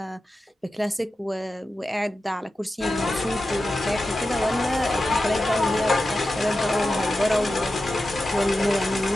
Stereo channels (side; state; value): both; normal; correlation 0.92